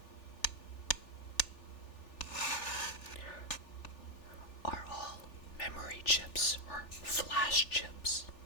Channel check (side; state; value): right; late; 3.4 ms